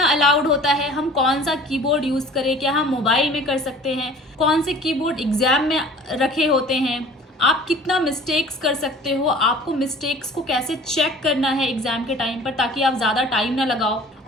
अलाउड होता है, हम कौन सा कीबोर्ड यूज करें, क्या हम मोबाइल में कर सकते हैं, कौन से कीबोर्ड एग्जाम में रखे होते हैं, आप कितना मिस्टेक्स कर सकते हो, आपको मिस्टेक्स को कैसे चेक करना है एग्जाम के टाइम पर ताकि आप ज़्यादा टाइम ना लगाओ,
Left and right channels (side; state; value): both; normal; correlation 0.46